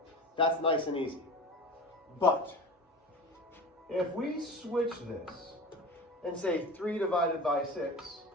that's nice and easy. But if we switch this and say 3 divided by 6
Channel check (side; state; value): both; normal; correlation 0.33